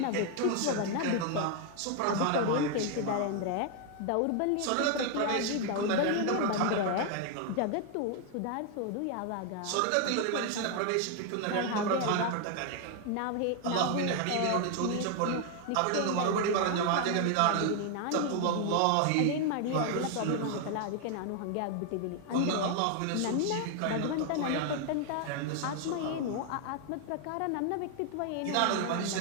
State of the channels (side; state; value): both; different; correlation 0.00